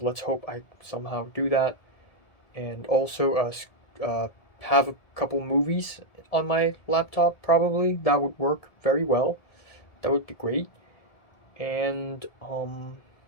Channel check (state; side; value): late; right; 1.7 ms